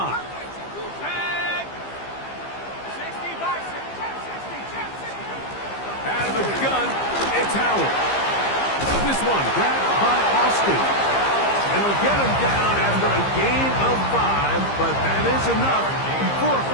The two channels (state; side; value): late; right; 15 ms